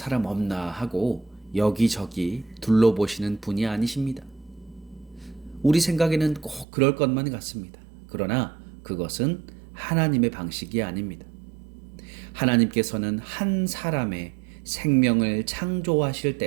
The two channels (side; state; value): left; drops out; at 6.7 s